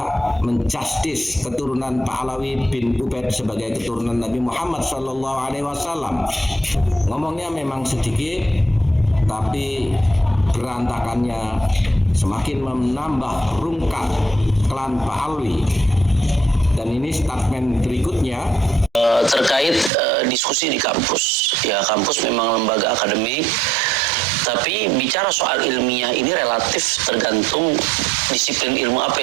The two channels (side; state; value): left; drops out; at 19.9 s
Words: menjustis keturunan Pak Alawi bin Ubaid sebagai keturunan Nabi Muhammad SAW. Ngomongnya memang sedikit, tapi berantakannya semakin menambah rungkat klan Pak Alawi. Dan ini statement berikutnya terkait diskusi di kampus. Ya, kampus memang lembaga akademik, tapi bicara soal ilmiah ini relatif tergantung disiplin ilmu apa